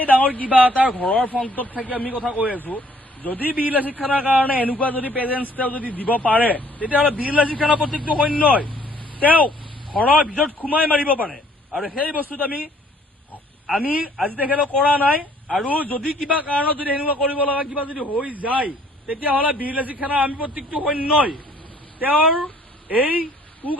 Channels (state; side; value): normal; both; correlation 0.60